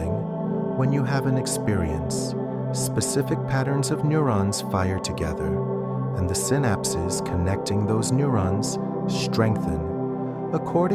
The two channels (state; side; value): identical; both; correlation 1.00